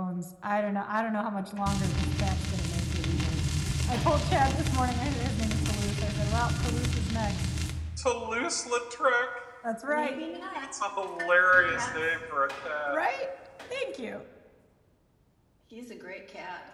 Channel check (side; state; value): both; identical; correlation 1.00